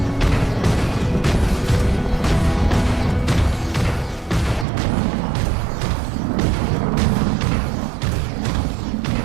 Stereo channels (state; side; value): drops out; left; at 4.7 s